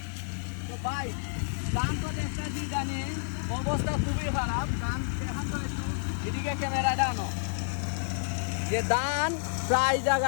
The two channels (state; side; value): silent; right; digital silence